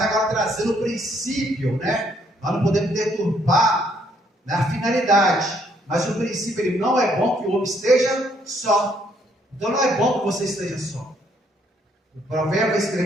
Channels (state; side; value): normal; both; correlation 0.69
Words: trazendo o princípio, né? Nós não podemos deturpar, né, a finalidade. Mas o princípio, ele não é bom que o homem esteja só. Então não é bom que você esteja só. O provérbio vai